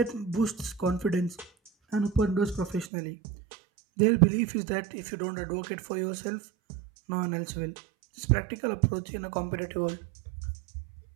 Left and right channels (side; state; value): left; drops out; at 2.9 s